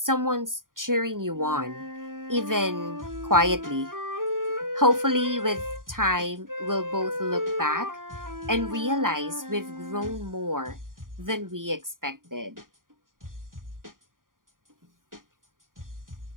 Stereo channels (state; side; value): late; left; 0.90 ms